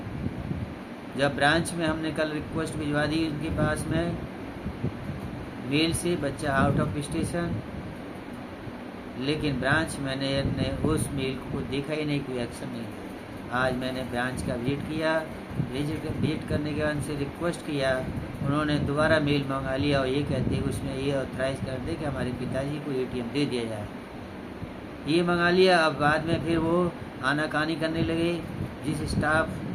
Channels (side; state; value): both; identical; correlation 1.00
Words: जब ब्रांच में हमने कल रिक्वेस्ट भिजवा दी उनके पास में मेल से, बच्चा आउट ऑफ स्टेशन, लेकिन ब्रांच मैनेजर ने उस मेल को देखा ही नहीं, कोई एक्शन नहीं। आज मैंने ब्रांच का विजिट किया, विजिट करने के बाद उनसे रिक्वेस्ट किया, उन्होंने दोबारा मेल मंगा लिया और ये कहते हैं उसमें ये ऑथराइज कर दे कि हमारे पिताजी को ATM दे दिया जाए। ये मंगा लिया। अब बाद में फिर वो आनाकानी करने लगे, जिस स्टाफ